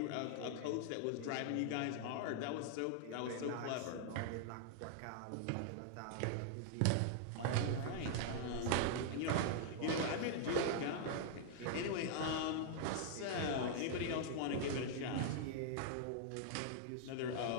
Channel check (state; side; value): different; both; correlation -0.01